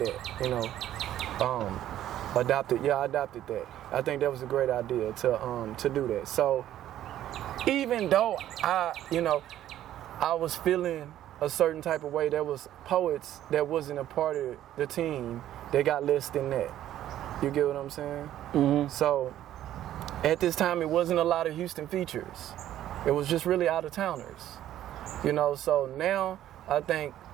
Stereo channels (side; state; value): left; quieter; 12.3 dB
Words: you know. I adopted that. I think that was a great idea to do that. So even though I was feeling a certain type of way, there was poets that wasn't a part of the team that got less than that. You get what I'm saying? So at this time, it wasn't a lot of Houston features. It was just really out-of-towners. You know, so now I think